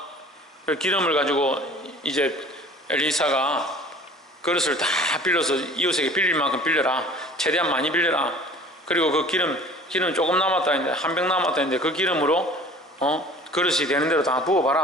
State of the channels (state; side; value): normal; both; correlation 0.46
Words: 기름을 가지고 이제 엘리사가 그릇을 다 빌려서 이웃에게 빌릴 만큼 빌려라. 최대한 많이 빌려라. 그리고 그 기름 조금 남았다 했는데 한 병 남았다 했는데 그 기름으로 그릇이 되는 대로 다